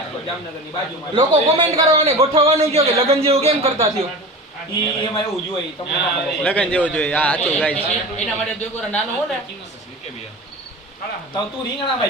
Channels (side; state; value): both; normal; correlation 0.33